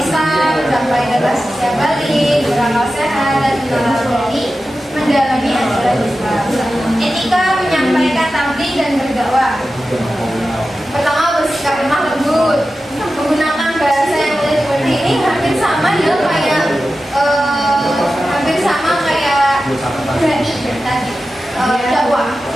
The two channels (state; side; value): normal; both; correlation 0.93